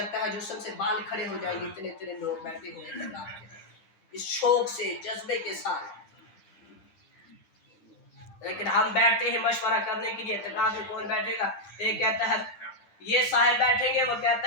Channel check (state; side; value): late; right; 10 ms